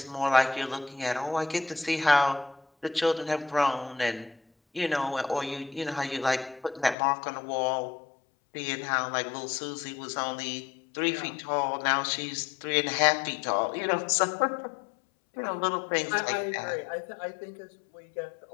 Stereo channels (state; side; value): drops out; right; at 7.0 s